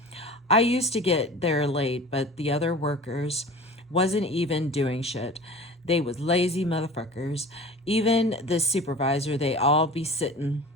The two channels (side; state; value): both; normal; correlation 0.39